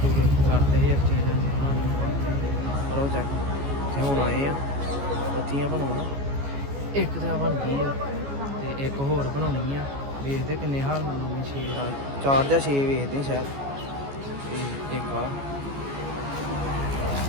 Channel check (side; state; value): left; late; 14 ms